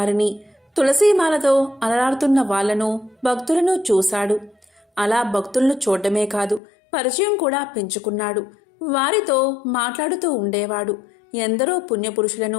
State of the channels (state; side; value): drops out; right; at 6.6 s